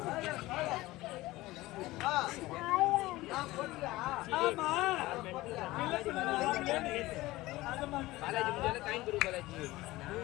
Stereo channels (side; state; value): right; quieter; 18.7 dB